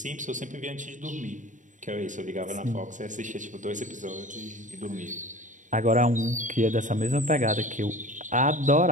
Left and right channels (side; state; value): left; late; 0.36 ms